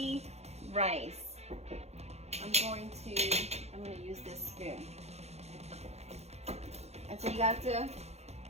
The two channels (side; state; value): left; late; 0.31 ms